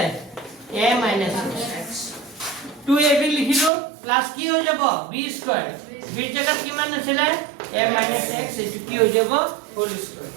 a minus x 2ab লিখিলো প্লাস কি হৈ যাব b স্কয়ার b জায়গাত কিমান আছিল a minus x এটো কি হৈ যাব হোল স্কয়ার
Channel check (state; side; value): drops out; left; at 3.7 s